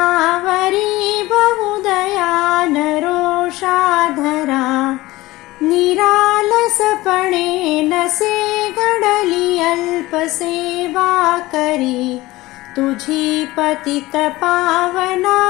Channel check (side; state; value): right; quieter; 18.8 dB